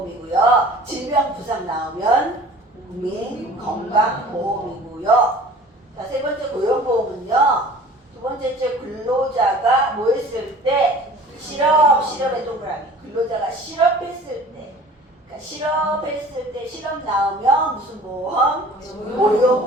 질병부상 나오면 국민건강보험이고요. 자, 세 번째 고용보험은요. 두 번째 근로자가 뭐 했을 때 실업의 동그라미. 근로자가 실업했을 때. 그러니까 실업했을 때 실업 나오면 무슨 보험?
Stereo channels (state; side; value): normal; both; correlation 0.45